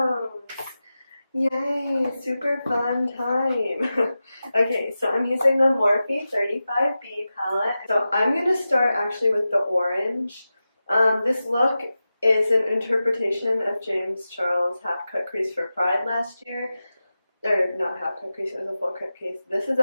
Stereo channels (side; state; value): both; inverted; correlation -0.93